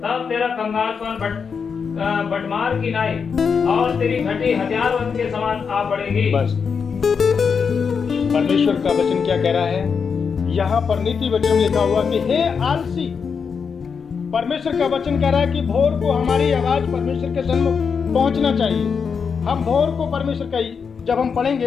तब तेरा कंगालपन बटमार की नाई और तेरी घटी हथियारबंद के समान आ पड़ेगी। बस परमेश्वर का वचन क्या कह रहा है यहाँ पर नीति वचन में लिखा हुआ कि हे आलसी, परमेश्वर का वचन कह रहा है कि भोर को हमारी आवाज परमेश्वर के सन्मुख पहुंचना चाहिए। हम भोर को परमेश्वर का, जब हम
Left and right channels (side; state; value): right; quieter; 6.0 dB